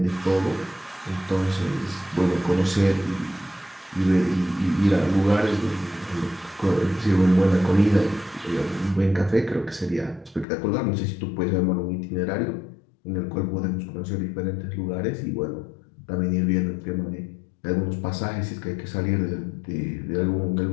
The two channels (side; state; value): right; drops out; at 10.5 s